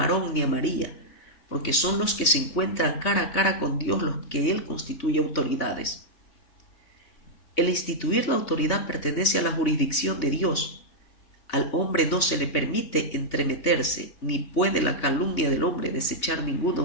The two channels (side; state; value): right; late; 3.5 ms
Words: Aarón ni a María, porque son los que se encuentran cara a cara con Dios los que Él constituye autoridades. El instituir la autoridad pertenece a la jurisdicción de Dios. Al hombre no se le permite entremeterse, ni puede la calumnia del hombre desechar ninguna